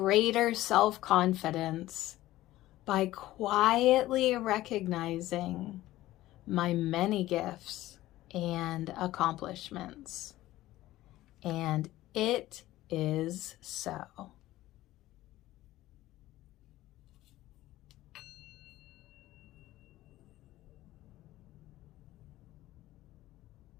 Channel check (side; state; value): right; quieter; 15.9 dB